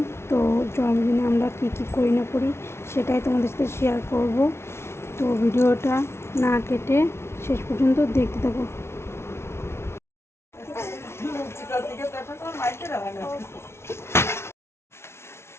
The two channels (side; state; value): right; late; 0.12 ms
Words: তো জন্মদিনে আমরা কী কী করি না করি সেটাই তোমাদের সাথে শেয়ার করব। তো ভিডিওটা না কেটে শেষ পর্যন্ত দেখতে থাকো।